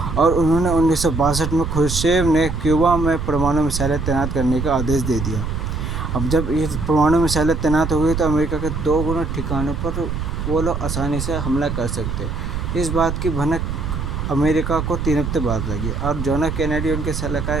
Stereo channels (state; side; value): noise; right; rumble, 3 dB below the sound